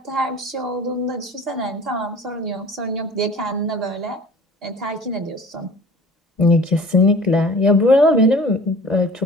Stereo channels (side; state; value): both; normal; correlation 0.45